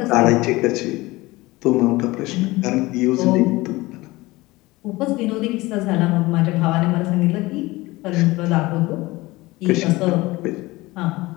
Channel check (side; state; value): right; quieter; 20.6 dB